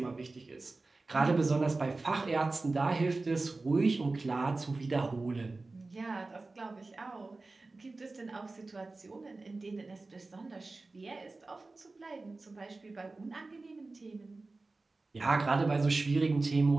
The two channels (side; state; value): left; quieter; 3.4 dB